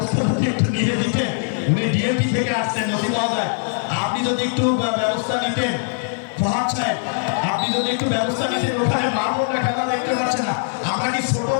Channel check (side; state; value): right; silent; 65 dB below the other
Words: একটু নিয়ে দিতেন। উনি ডিএমপি থেকে আসছেন নসিবাজার, আপনি যদি একটু ব্যবস্থা নিতেন ফরহাদ সাহেব, আপনি যদি একটু ব্যবস্থা নিতেন। ওখানে মামলা খেলা দেখতে পাচ্ছে না, আমরা কি ছোট